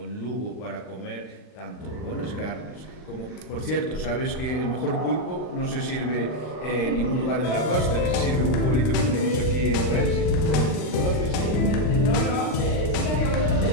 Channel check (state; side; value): late; right; 39 ms